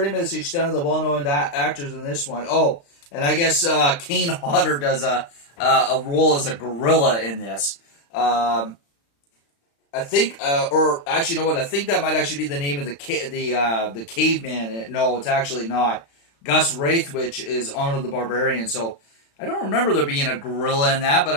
much the extent of the well-known actors in this one. Oh, and I guess Kane Hodder does a role as a gorilla in this. I think, or actually, you know what? I think that might actually be the name of the caveman. No, it's actually not. Gus Raithwich is Arnold the Barbarian. So I don't remember there being a gorilla in that, but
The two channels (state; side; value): late; right; 35 ms